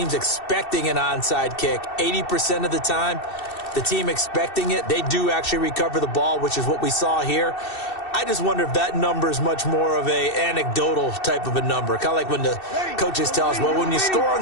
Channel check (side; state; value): right; late; 2.7 ms